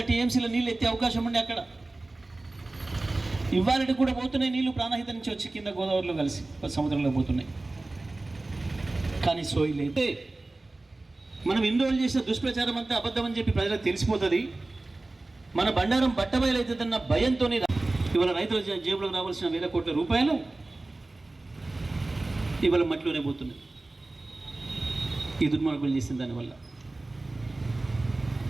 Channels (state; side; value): quieter; left; 3.0 dB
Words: టీఎంసీల నీళ్ళు ఎత్తే అవకాశం ఉండి అక్కడ ఇవాళకి కూడా పోతున్నాయి నీళ్లు, ప్రాణహిత నుంచి వచ్చి కింద గోదావరిలో కలిసి సముద్రంలో పోతున్నాయి. కానీ సోయి లేదు. మనం ఎన్ని రోజులు చేసిన దుష్ప్రచారం అంతా అబద్ధం అని చెప్పి ప్రజలకు తెలిసిపోతుంది. మన బండారం బట్టబయలవుతుందన్న భయంతో ఇవాళ రైతుల జేబులకు రావాల్సిన 1,000 కోట్ల రూపాయలు ఇవాళ మట్టిలోనే పోతున్నాయి. ఈ దుర్మార్గులు చేసిన దానివల్ల